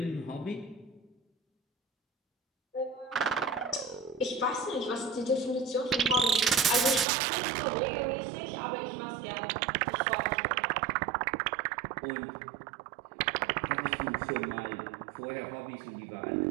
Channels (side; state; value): left; drops out; at 7.1 s